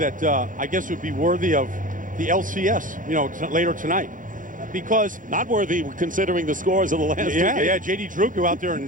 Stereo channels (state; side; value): late; left; 0.38 ms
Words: I guess would be worthy of the LCS, you know, later tonight. Because not worthy considering the scores of the last two games. Yeah, J.D. Drew go out there